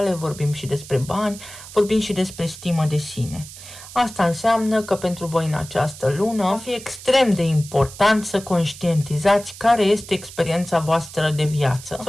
vorbim și despre bani, vorbim și despre stimă de sine. Asta înseamnă că pentru voi în această lună va fi extrem de important să conștientizați care este experiența voastră de viață.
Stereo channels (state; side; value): noise; right; hiss, 15 dB below the sound